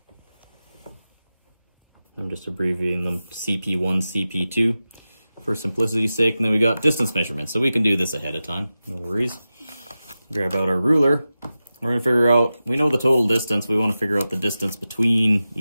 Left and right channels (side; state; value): both; inverted; correlation -0.94